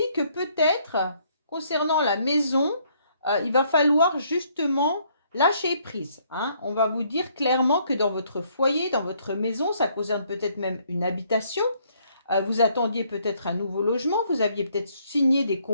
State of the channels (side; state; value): both; inverted; correlation -0.67